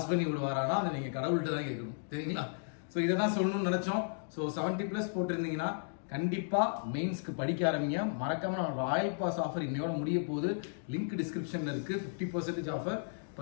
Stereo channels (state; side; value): silent; right; digital silence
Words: பண்ணி விடுவாரானா அதை நீங்க கடவுள்கிட்ட தான் கேட்கணும் சரிங்களா. சோ இதை தான் சொல்லணும்னு நினைச்சோம். சோ 70+ போட்டிருந்தீங்கன்னா கண்டிப்பா மெயின்ஸ்க்கு படிக்க ஆரம்பிங்க. மறக்காம ராயல் பாஸ் ஆஃபர் இன்னையோட முடிய போகுது. லிங்க் டிஸ்கிரிப்ஷன்ல இருக்கு. 50% ஆஃபர்